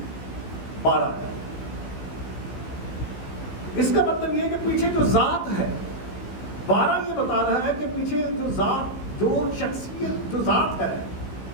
12 ہے. اس کا مطلب یہ ہے کہ پیچھے جو ذات ہے, 12 یہ بتا رہا ہے کہ پیچھے جو ذات, جو شخصیت, جو ذات ہے,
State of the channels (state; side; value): late; right; 16 ms